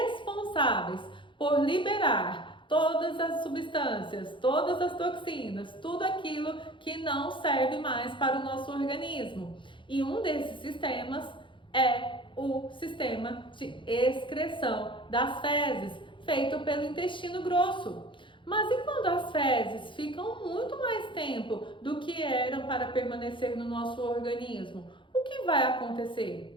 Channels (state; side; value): late; right; 0.24 ms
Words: por liberar todas as substâncias, todas as toxinas, tudo aquilo que não serve mais para o nosso organismo. E um desses sistemas é o sistema de excreção das fezes, feito pelo intestino grosso. Mas e quando as fezes ficam muito mais tempo do que eram para permanecer no nosso organismo? O que vai acontecer?